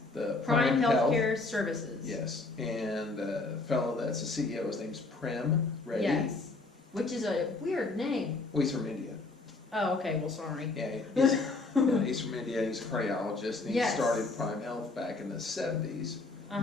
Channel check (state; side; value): quieter; right; 3.4 dB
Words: the Prime Healthcare Services. Yes, and the fellow that's the CEO, his name's Prem Reddy. Yes, which is a weird name. Well, he's from India. Oh, okay, well, sorry. Yeah, he's from India, he's a cardiologist, and he started Prime Health back in the 70s,